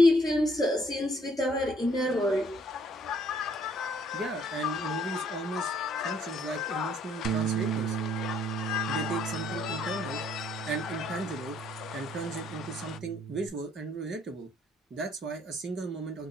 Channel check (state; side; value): normal; both; correlation 0.65